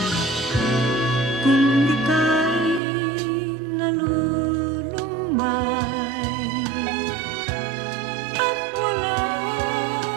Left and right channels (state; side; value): drops out; left; at 2.8 s